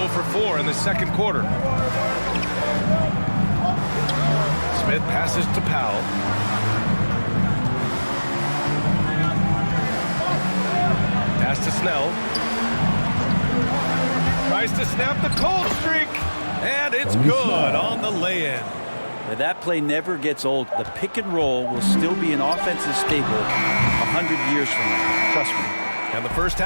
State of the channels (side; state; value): both; inverted; correlation -1.00